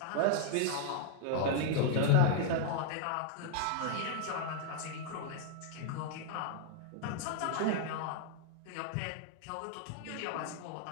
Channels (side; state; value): both; different; correlation 0.00